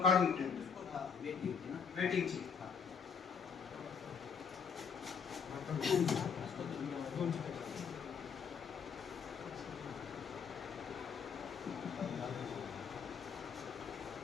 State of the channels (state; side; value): quieter; right; 6.4 dB